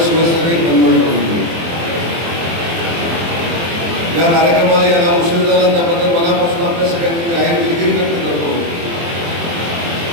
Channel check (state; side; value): late; left; 24 ms